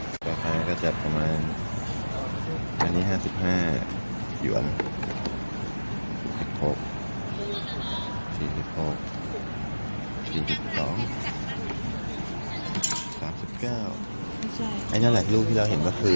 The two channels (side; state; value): both; inverted; correlation -1.00